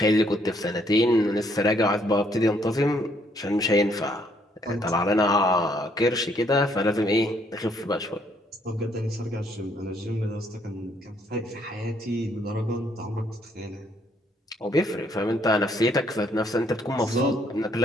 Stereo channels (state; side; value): normal; both; correlation 0.69